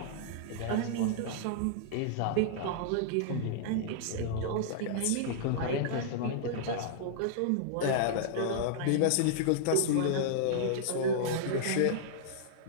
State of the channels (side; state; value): both; different; correlation -0.02